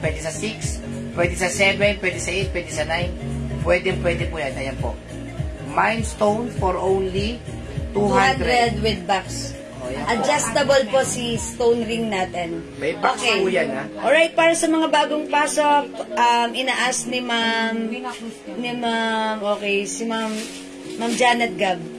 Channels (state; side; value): identical; both; correlation 1.00